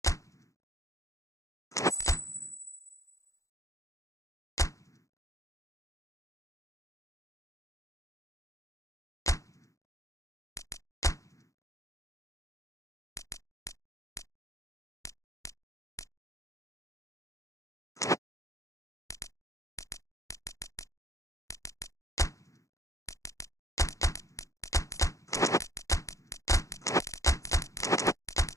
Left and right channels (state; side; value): late; right; 0.15 ms